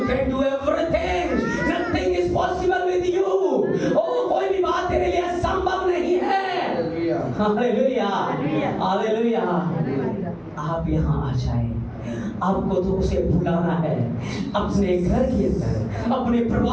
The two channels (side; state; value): both; identical; correlation 1.00